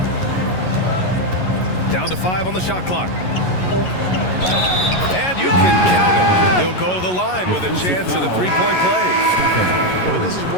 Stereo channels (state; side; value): late; right; 11 ms